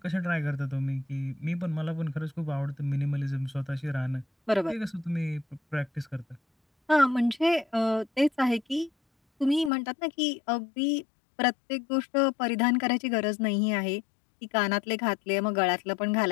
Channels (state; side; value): drops out; right; at 9.7 s